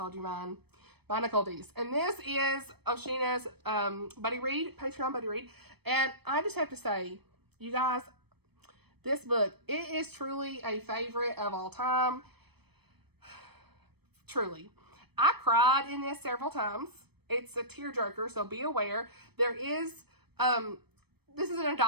you mine, by Nicole Deese. And this is Oshina's buddy read, Patreon buddy read. And I just have to say, you guys, this book, it is truly a favorite of all time. Truly. I cried in this several times. It's a tearjerker, so be aware. There is, this is an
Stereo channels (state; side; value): late; left; 0.97 ms